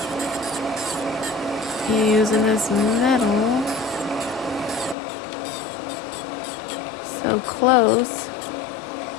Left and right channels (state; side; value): drops out; right; at 5.0 s